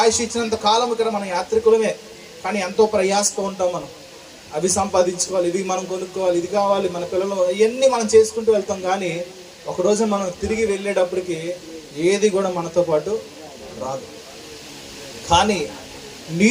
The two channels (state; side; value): identical; both; correlation 1.00